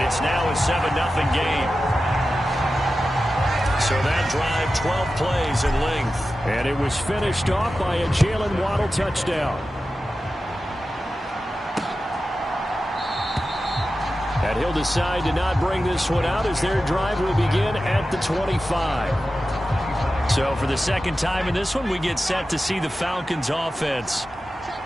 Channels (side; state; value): both; normal; correlation 0.93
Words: it's now a 7-0 game. So that drive, 12 plays in length. And it was finished off by a Jalen Waddle touchdown. And he'll decide to not bring this one out as their drive will begin at the 25. So for the 2nd time in this one, we get set to see the Falcons offense.